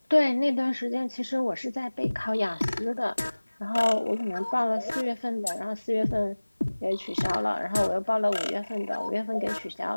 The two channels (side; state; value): both; inverted; correlation -1.00